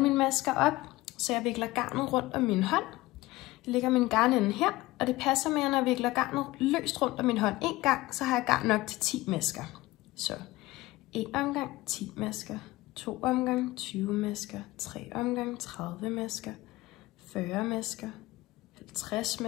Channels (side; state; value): right; quieter; 19.0 dB